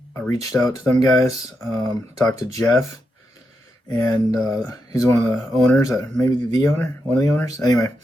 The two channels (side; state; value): both; normal; correlation 0.85